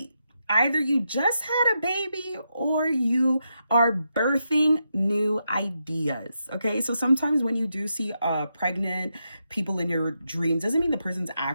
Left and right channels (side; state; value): both; inverted; correlation -0.84